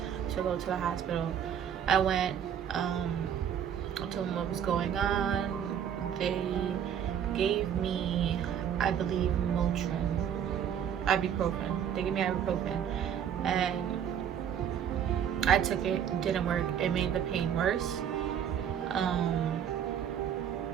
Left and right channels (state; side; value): quieter; left; 8.9 dB